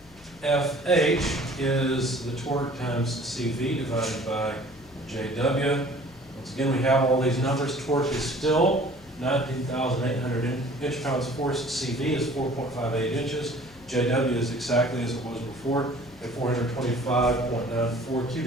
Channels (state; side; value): noise; left; hum, 24 dB below the sound